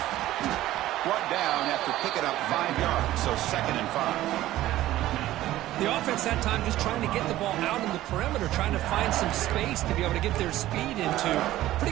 Brought down after picking up 5 yards, so 2nd and 5. The offense that time just trying to get the ball out in the perimeter, trying to find some space to be able to get their speed into.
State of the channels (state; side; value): quieter; left; 14.9 dB